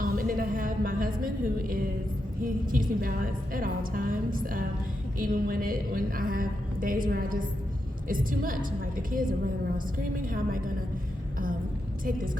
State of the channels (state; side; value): normal; both; correlation 0.85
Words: then I have my husband, he keeps me balanced at all times, even when I have days where it's too much. Like the kids are running around screaming. How am I gonna take this